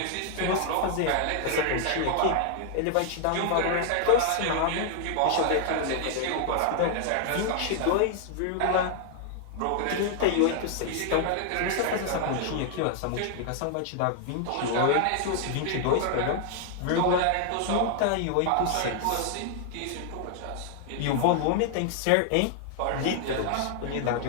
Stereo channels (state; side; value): different; both; correlation 0.00